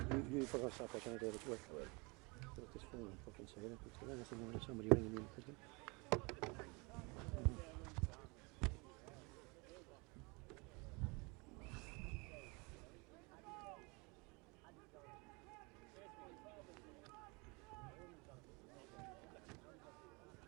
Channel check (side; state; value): left; quieter; 28.3 dB